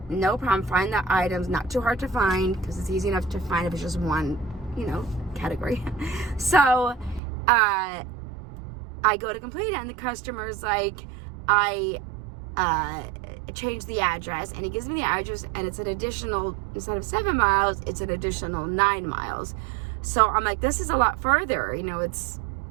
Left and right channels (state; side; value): drops out; left; at 7.2 s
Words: no problem, find the items, not too hard to find, because it's easy enough to find if it's just one, category. So I go to complete it, and the customer's like, I changed the address, and he gives me the address, and it's an additional, instead of 7 miles, it's an additional 9 miles. So I'm like, this is a lot further, it's